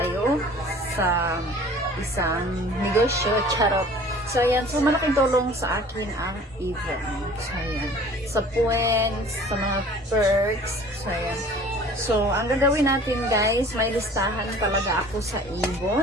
sa isang negosyo, charot. So, ayan. So, malaking tulong sa akin ang Avon. So, ayan. Sa points, sa mga perks. So, ayan. So, ang gagawin natin, guys, may listahan talaga ako sa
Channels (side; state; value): both; normal; correlation 0.47